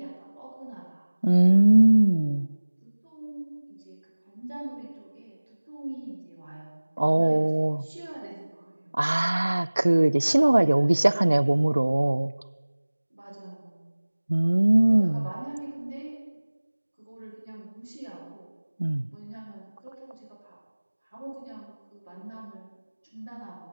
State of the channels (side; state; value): both; inverted; correlation -1.00